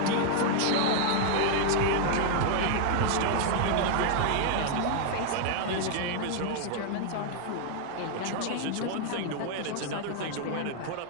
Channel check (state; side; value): different; both; correlation 0.00